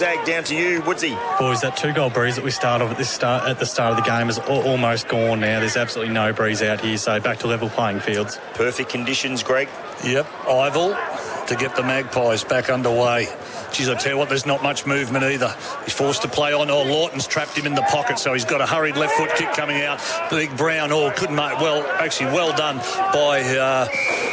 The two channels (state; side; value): identical; both; correlation 1.00